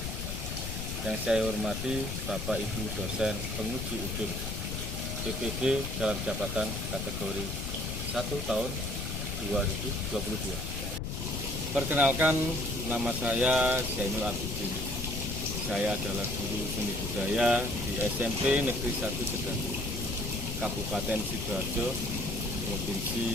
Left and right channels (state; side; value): noise; left; rumble, 4 dB below the sound